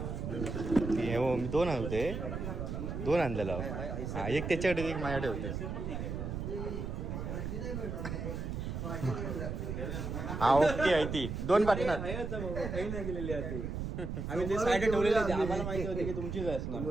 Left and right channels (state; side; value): noise; right; rumble, 4 dB below the sound